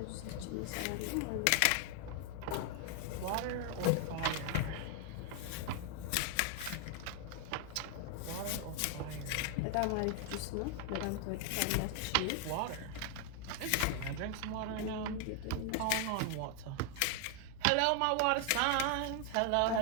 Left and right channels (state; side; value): different; both; correlation 0.00